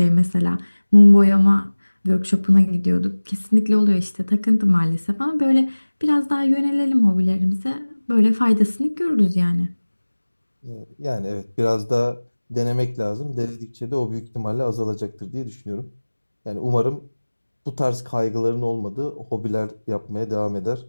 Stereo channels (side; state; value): both; inverted; correlation -1.00